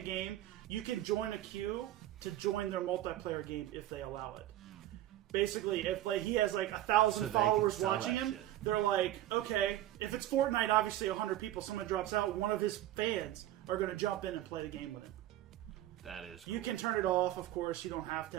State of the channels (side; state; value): left; quieter; 13.7 dB